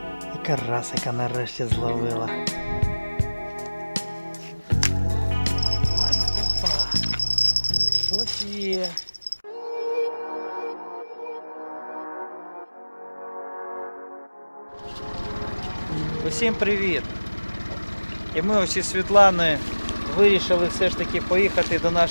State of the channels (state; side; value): inverted; both; correlation -1.00